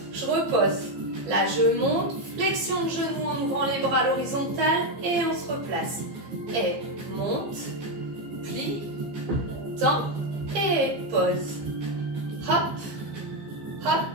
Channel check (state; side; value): late; left; 15 ms